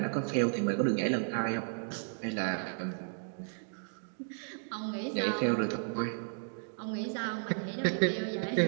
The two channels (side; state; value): left; silent; digital silence